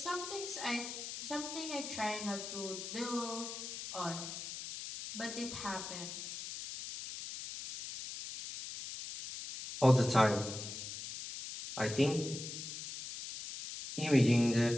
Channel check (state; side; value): noise; left; hiss, 8 dB below the sound